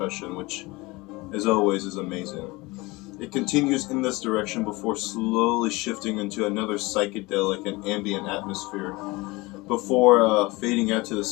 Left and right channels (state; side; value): quieter; right; 22.9 dB